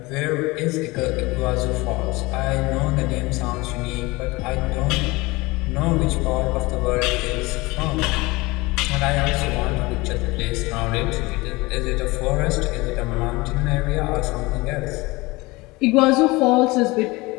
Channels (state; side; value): quieter; right; 22.7 dB